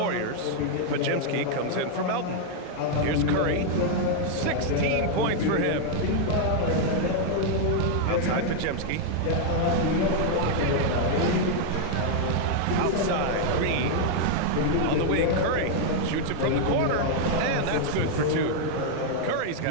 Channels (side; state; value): both; different; correlation 0.00